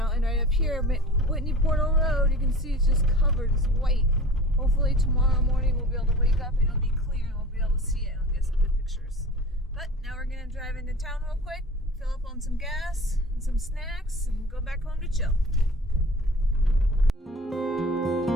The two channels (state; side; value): normal; both; correlation 0.41